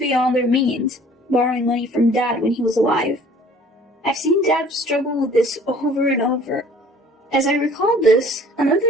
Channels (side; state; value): both; normal; correlation 0.52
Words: their means, borrowing money from Dad when he was alive. I've seen Dad struggle with this over and over. As I recalled this,